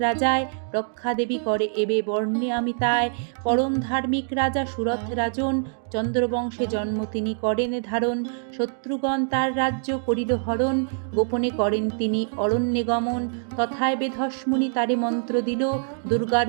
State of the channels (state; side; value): silent; left; 62 dB below the other